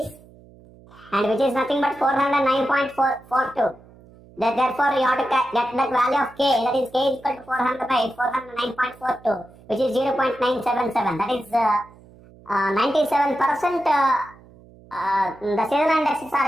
and which is nothing but 409.42. Therefore, you have to get the value of K, that is K is equal to 400 by 409.42, which is 0.977. That is 97% the seasonal indexes are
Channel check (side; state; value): right; noise; hum, 24 dB below the sound